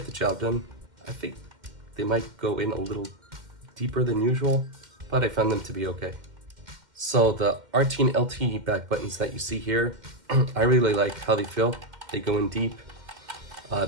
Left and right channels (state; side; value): late; left; 2.1 ms